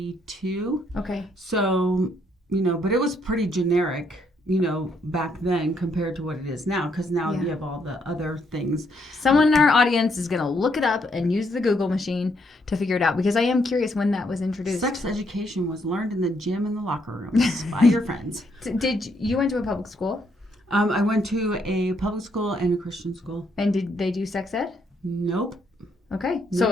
Okay. So, but it was pretty generic, back then compared to what it is now, because now you have all the other things. Someone in our audience is going to look it up and use the Google machine to figure it out, because I am curious when that was introduced. Sex education was learned in the gym and the locker rooms by your friends. Did you went to a public school? I went to a public school and a Christian school. And did they do sex ed? Nope. Okay.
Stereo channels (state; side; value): normal; both; correlation 0.73